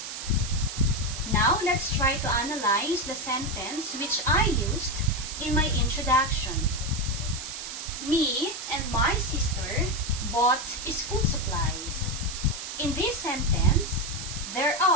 Now, let's try to analyze the sentence which I used in my introduction. Me and my sister bought school supplies. In this sentence, there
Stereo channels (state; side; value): noise; right; hiss, 8 dB below the sound